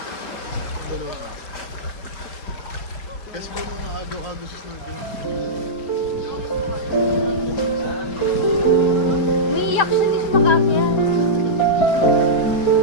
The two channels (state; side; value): late; right; 4.5 ms